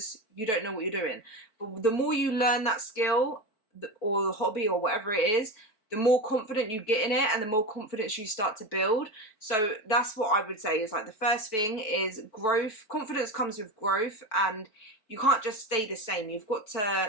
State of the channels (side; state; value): right; late; 4.5 ms